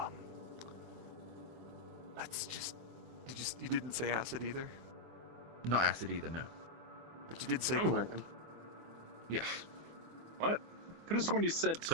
let's just... You didn't say acid either? Not acid either, no. But you did say Oh, cold. I can- Yes. What? Could have sworn you said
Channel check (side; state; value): left; late; 24 ms